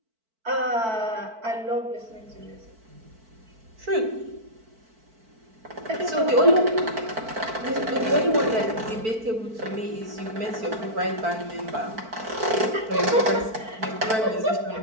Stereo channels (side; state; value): left; late; 4.5 ms